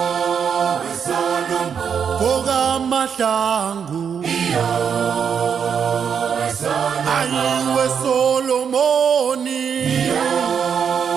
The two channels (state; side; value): quieter; left; 7.2 dB